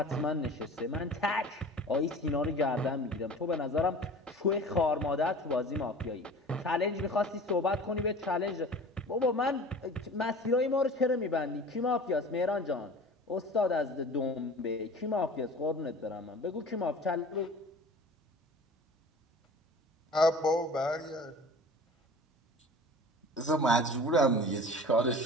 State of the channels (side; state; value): both; normal; correlation 0.41